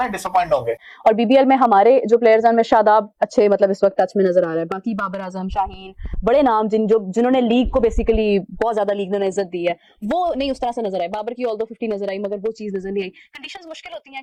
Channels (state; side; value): identical; both; correlation 1.00